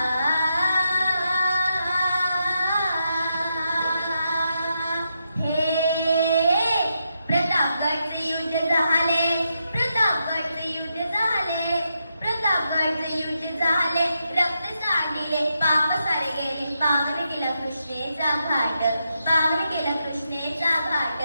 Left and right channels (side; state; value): both; inverted; correlation -0.83